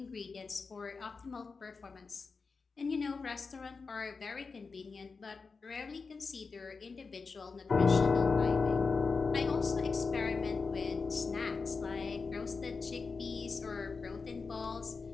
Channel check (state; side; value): quieter; right; 4.6 dB